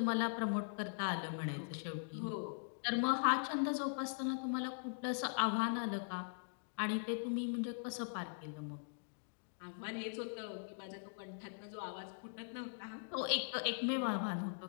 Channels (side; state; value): right; silent; digital silence